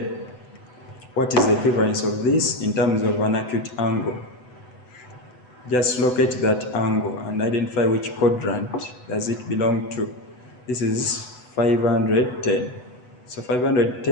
what is the equivalence of this in terms of an acute angle? Just locate that angle and identify which quadrant does it belong to. This is 510. So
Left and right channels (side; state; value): right; late; 8.0 ms